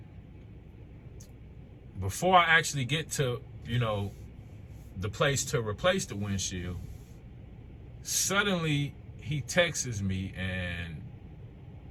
Before I actually get to, you know, the place to replace the windshield, suddenly he texts me and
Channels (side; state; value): both; identical; correlation 1.00